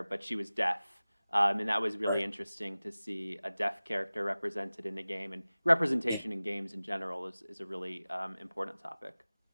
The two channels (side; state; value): both; inverted; correlation -0.98